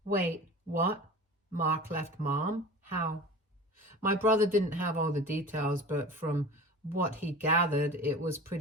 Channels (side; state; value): both; normal; correlation 0.37